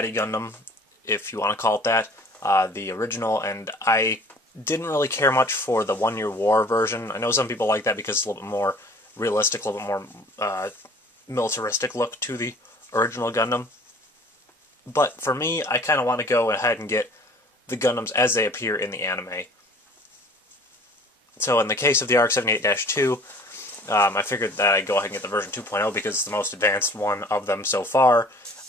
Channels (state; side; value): normal; both; correlation 0.49